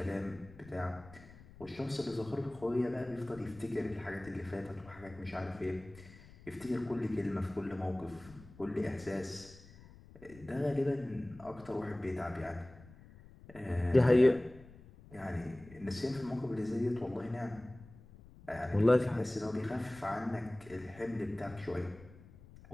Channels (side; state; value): left; noise; rumble, 20 dB below the sound